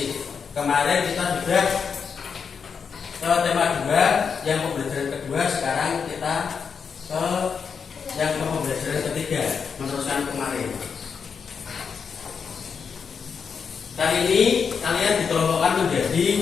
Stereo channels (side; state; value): right; quieter; 6.2 dB